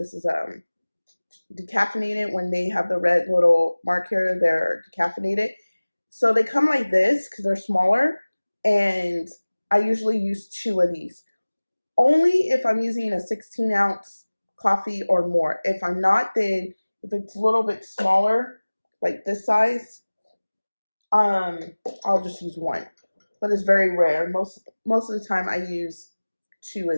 decaffeinated. When they have the red little mark here, they're decaffeinated. So they come like this because they're smaller, and I usually use 2 of these. Only if I'm using a 16-ounce coffee or more. If I'm not, then if it's a little bit smaller, like this size, I'll just use 1. But it's very rare. Most of the time I use 2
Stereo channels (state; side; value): inverted; both; correlation -1.00